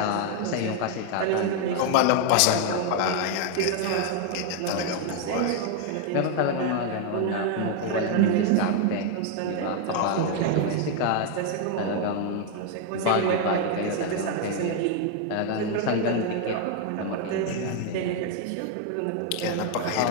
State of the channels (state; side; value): different; both; correlation 0.01